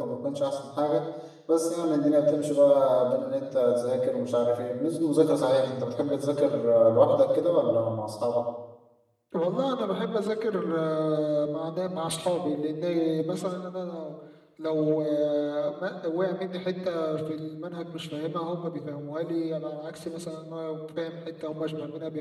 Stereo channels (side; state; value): both; identical; correlation 1.00